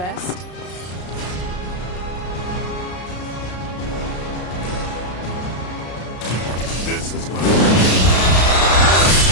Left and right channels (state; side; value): late; right; 33 ms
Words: This is gonna